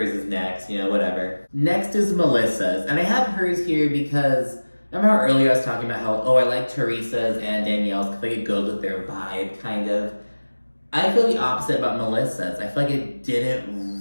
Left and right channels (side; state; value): both; inverted; correlation -1.00